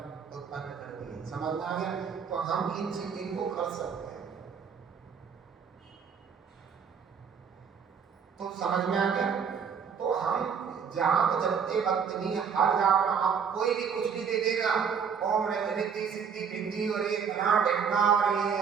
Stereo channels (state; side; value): quieter; left; 6.8 dB